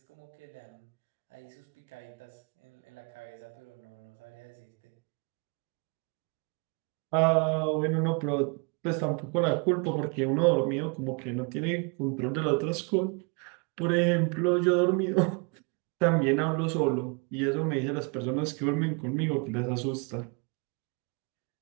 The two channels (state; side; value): quieter; left; 34.5 dB